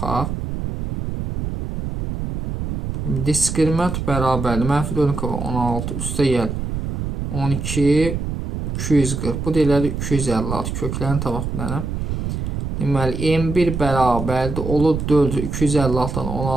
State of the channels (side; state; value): right; noise; rumble, 4 dB below the sound